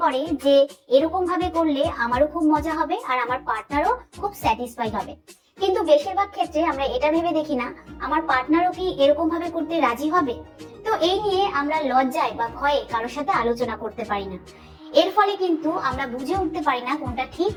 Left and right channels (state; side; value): identical; both; correlation 1.00